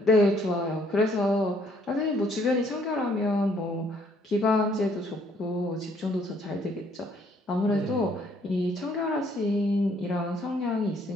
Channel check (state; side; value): normal; both; correlation 0.65